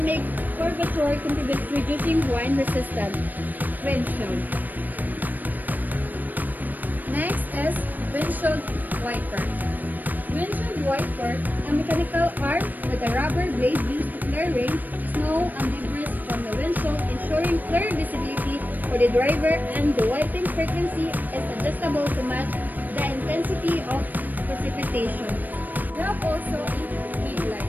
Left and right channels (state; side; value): late; left; 0.087 ms